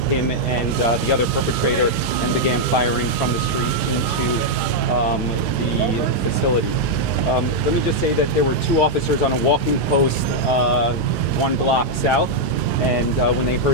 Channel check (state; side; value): normal; both; correlation -0.03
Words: him and the other perpetrator, and began firing from the street into the facility. Let me just say that there were two officers on a walking post 1 block south, and when they